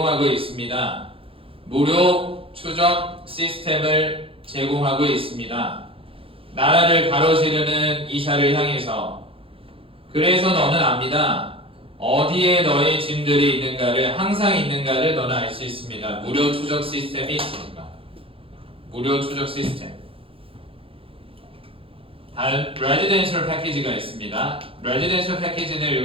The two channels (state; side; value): late; left; 0.27 ms